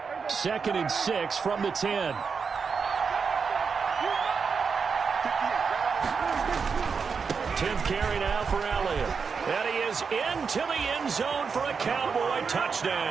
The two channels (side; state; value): left; quieter; 5.6 dB